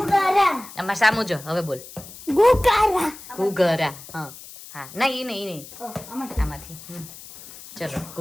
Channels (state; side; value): noise; left; hiss, 16 dB below the sound